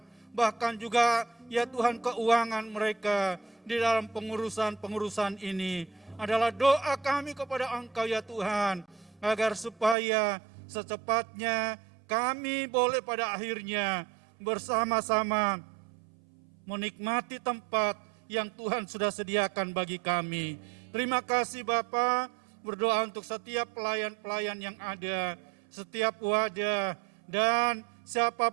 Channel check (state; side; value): drops out; left; at 10.0 s